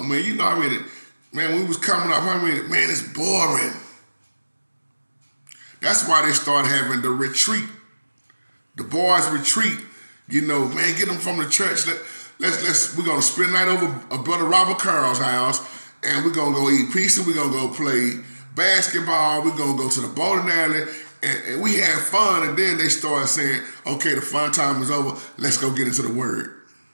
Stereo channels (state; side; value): inverted; both; correlation -1.00